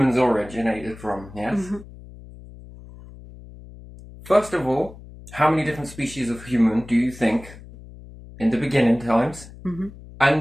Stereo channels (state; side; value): noise; left; hum, 18 dB below the sound